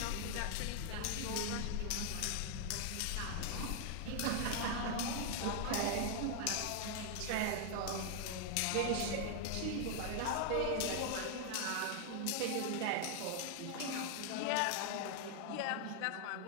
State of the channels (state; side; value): different; both; correlation 0.00